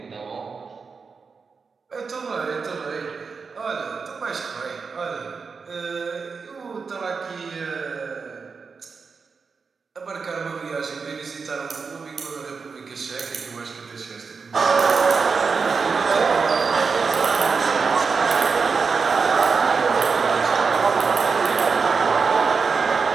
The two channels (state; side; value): quieter; left; 5.1 dB